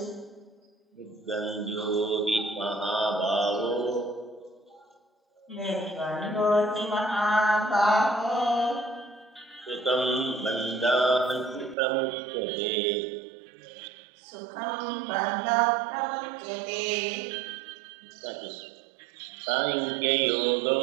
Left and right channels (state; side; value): drops out; left; at 11.8 s